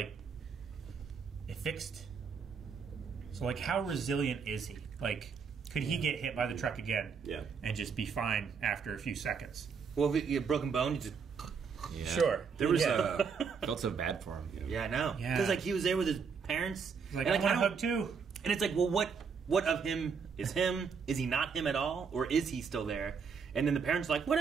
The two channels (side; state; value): left; quieter; 5.9 dB